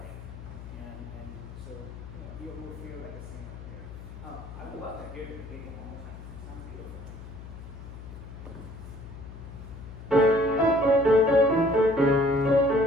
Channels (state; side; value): noise; left; hum, 13 dB below the sound